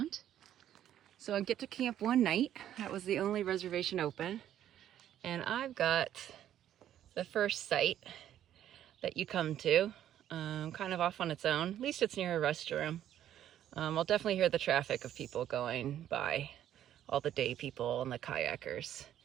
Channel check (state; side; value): quieter; left; 11.2 dB